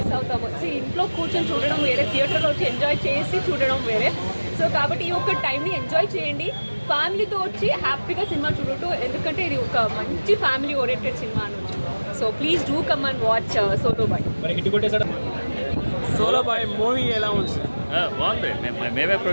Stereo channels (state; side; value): inverted; both; correlation -1.00